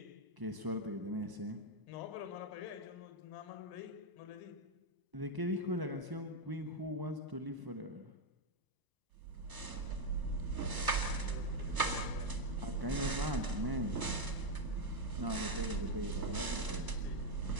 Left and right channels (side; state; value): left; late; 1.0 ms